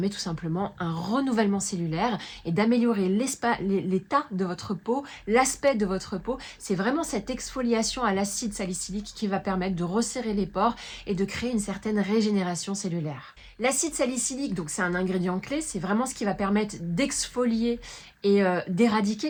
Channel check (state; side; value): identical; both; correlation 1.00